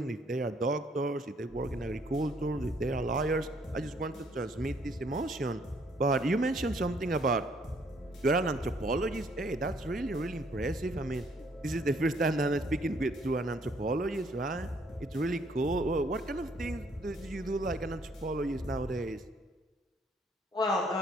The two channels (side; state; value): both; normal; correlation 0.65